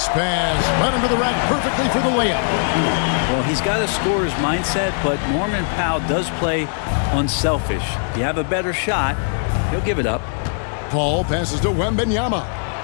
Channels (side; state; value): right; silent; digital silence